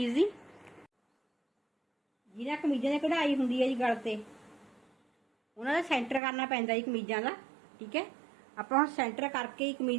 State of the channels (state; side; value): drops out; left; at 6.2 s